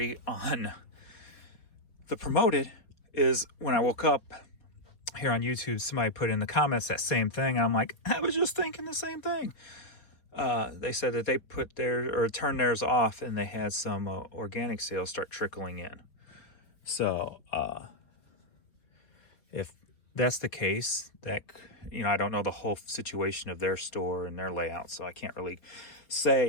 on the promoted is when I woke up here on YouTube, somebody put in the comments that same thing. And I'm like, I was just thinking the same thing. They said that they put turned theirs off and they had some organic sales start trickling in. So if that's the case, that, you know, I don't know the whole situation of their store and their layout, so I can't really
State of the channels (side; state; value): right; late; 4.7 ms